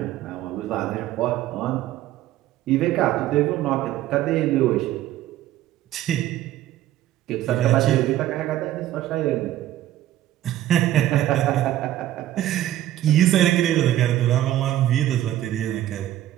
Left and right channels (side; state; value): left; quieter; 13.5 dB